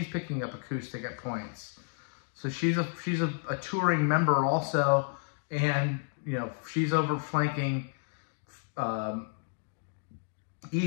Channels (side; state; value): right; silent; 57 dB below the other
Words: picking up acoustic at points. So she's a touring member also. And, you know, she's over flanking